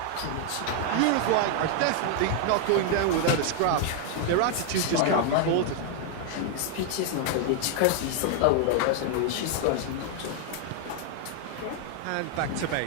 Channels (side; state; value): both; different; correlation 0.00